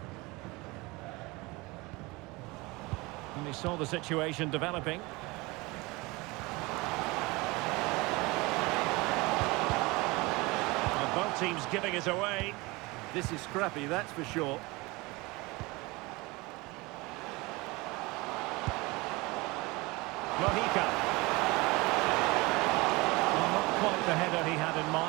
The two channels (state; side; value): quieter; left; 23.6 dB